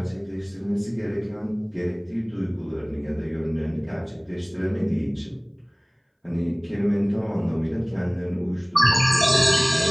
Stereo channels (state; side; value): identical; both; correlation 1.00